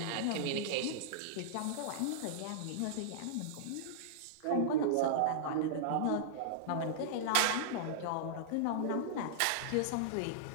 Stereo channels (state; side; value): different; both; correlation -0.02